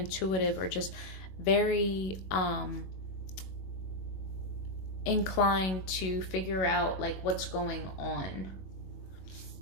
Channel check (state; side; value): late; right; 21 ms